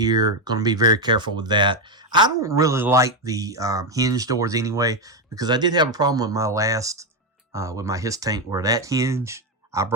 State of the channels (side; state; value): both; normal; correlation 0.06